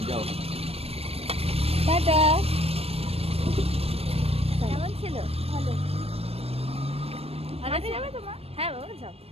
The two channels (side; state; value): left; late; 0.29 ms